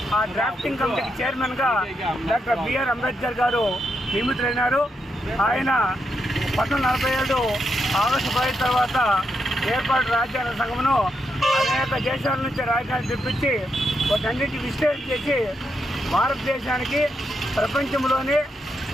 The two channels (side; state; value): both; normal; correlation 0.82